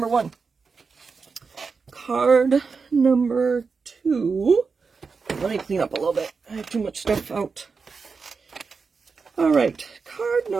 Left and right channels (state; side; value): quieter; left; 4.9 dB